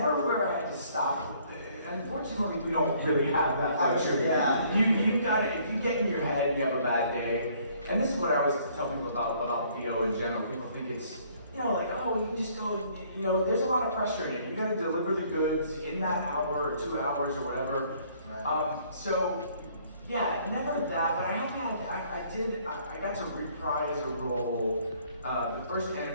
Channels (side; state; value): both; inverted; correlation -0.62